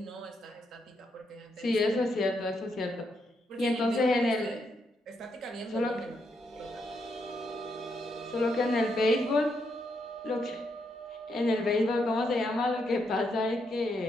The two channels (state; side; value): normal; both; correlation 0.79